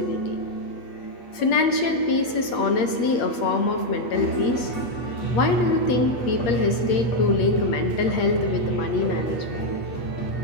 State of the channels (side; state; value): right; late; 8.5 ms